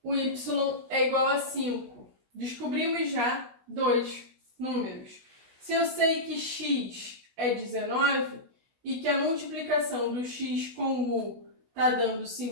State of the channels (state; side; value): late; left; 16 ms